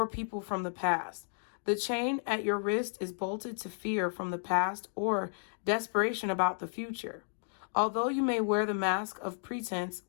people from the past. The chain at your wrist is bolted to fear from the past or desperation about the future. Although you may wear the mask of pretense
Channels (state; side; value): silent; right; digital silence